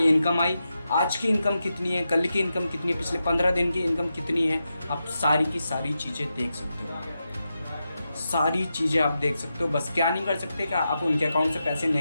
आई, आज की इनकम कितनी है, कल की इनकम कितनी है, पिछले 15 दिन की इनकम कितनी है। आप सारी की सारी चीज़ें देख सकते हो। सारी चीज़ें आप देख सकते हो। बस क्या नहीं कर सकते कि आप उनके अकाउंट से पैसे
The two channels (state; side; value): inverted; both; correlation -0.88